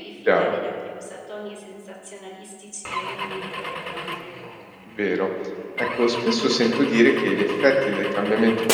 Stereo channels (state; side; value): identical; both; correlation 1.00